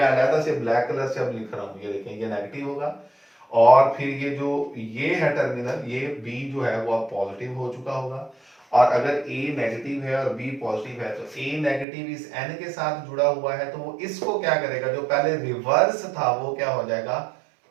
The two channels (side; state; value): left; drops out; at 11.9 s